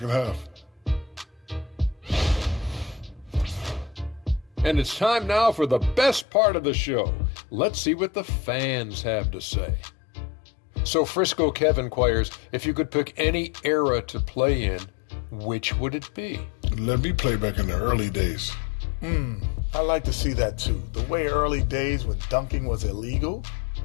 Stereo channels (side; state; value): right; drops out; at 6.2 s